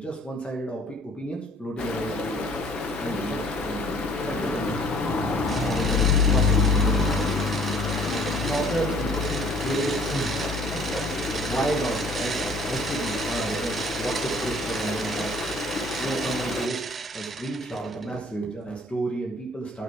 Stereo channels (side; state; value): both; normal; correlation 0.56